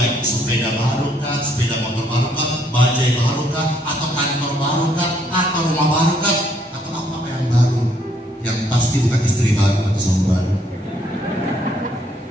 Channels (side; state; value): both; normal; correlation 0.68